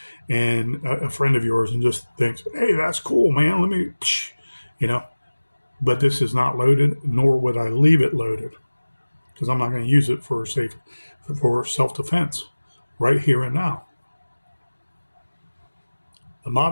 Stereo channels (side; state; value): both; inverted; correlation -1.00